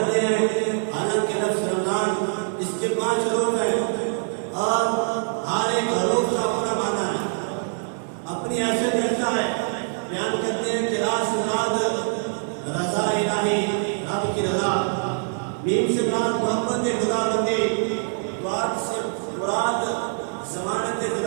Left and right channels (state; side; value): silent; left; digital silence